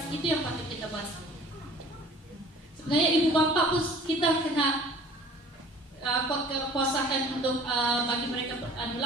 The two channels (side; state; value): both; normal; correlation 0.49